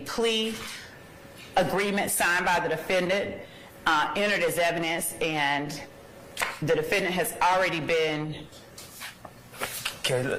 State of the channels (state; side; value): identical; both; correlation 1.00